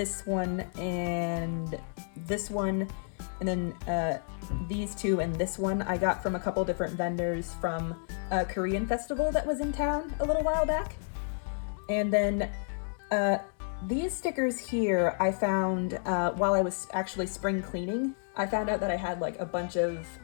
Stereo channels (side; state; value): right; silent; digital silence